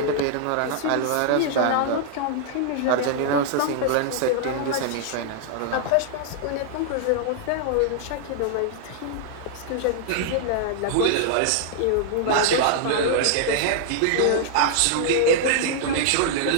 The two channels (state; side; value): different; both; correlation -0.01